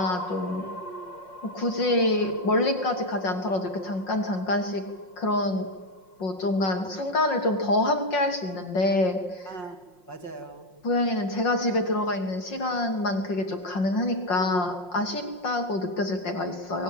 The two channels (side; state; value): right; late; 5.6 ms